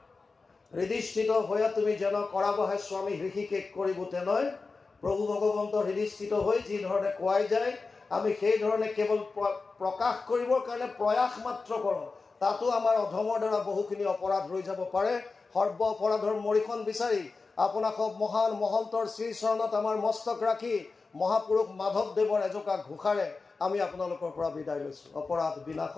হৃদিস্থিত হৈয়া তুমি যেন কৰাবহে স্বামী হৃষিকেশ কৰিব তেনেই। প্ৰভু ভগৱন্তৰ হৃদিস্থিত হৈ যি ধৰণে কোৱাই যায়, আমি সেই ধৰণে কেৱল প্ৰকাশ কৰিবৰ কাৰণে প্ৰয়াস মাত্ৰ কৰোঁ। তাতো আমাৰ অধমৰ দ্বাৰা বহুখিনি অপৰাধ ৰৈ যাব পাৰে। সৰ্ব অপৰাধৰ মৰিখন বিচাৰি আপোনাক মহান মহন্তৰ শ্ৰীচৰণত আমাৰ মস্তক ৰাখি মহাপুৰুষ মাধৱদেৱৰ এজোকা ঘোষাৰে আমি আপোনালোকৰ পৰা বিদায় লৈছোঁ। অপৰাধ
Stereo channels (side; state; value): right; quieter; 4.1 dB